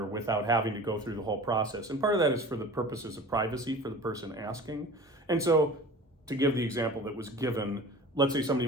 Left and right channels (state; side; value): normal; both; correlation 0.40